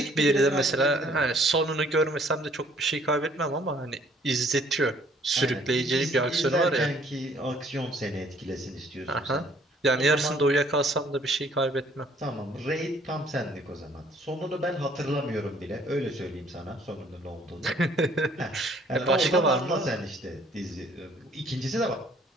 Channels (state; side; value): normal; both; correlation 0.60